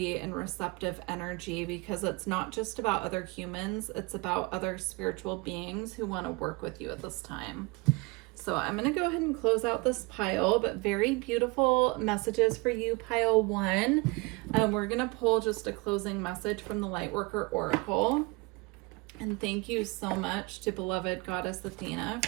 and receptive energy, because it's not just about other humans, it's about other spiritual beings who want to work with you at this time. So I'm going to go ahead and close out this pile, but very beautiful messages for you, pile 1. We're going to pull just a closing message from the Lightworker Oracle. And thank you so much to beloved Goddess Athena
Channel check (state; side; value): quieter; left; 26.2 dB